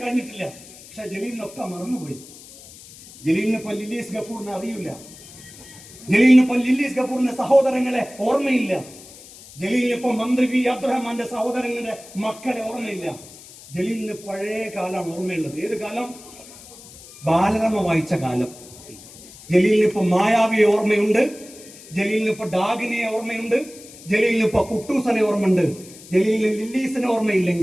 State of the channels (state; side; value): noise; left; hiss, 19 dB below the sound